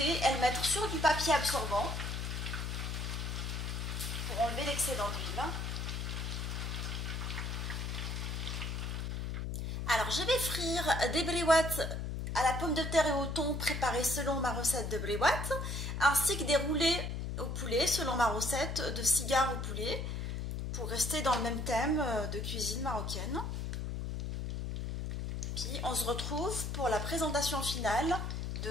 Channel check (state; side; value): noise; left; hum, 3 dB below the sound